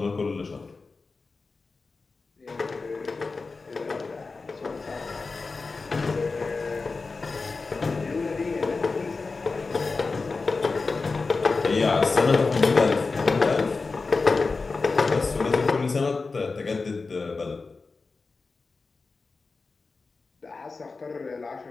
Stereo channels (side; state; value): right; quieter; 4.1 dB